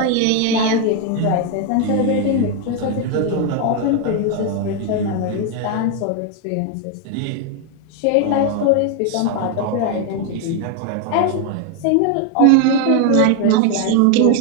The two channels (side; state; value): both; different; correlation 0.01